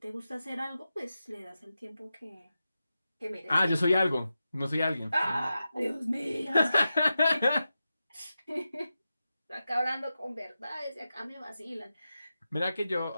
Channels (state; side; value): inverted; both; correlation -0.91